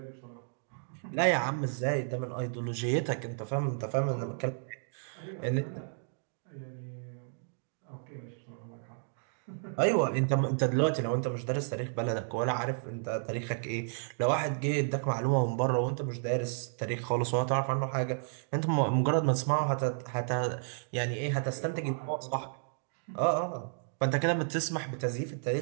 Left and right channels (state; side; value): silent; left; digital silence